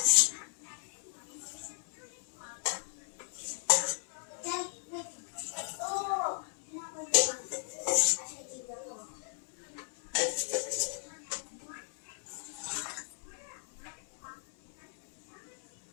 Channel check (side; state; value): right; silent; 54 dB below the other